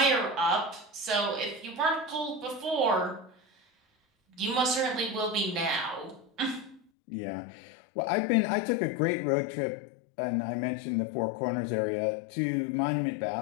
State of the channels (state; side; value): drops out; right; at 6.8 s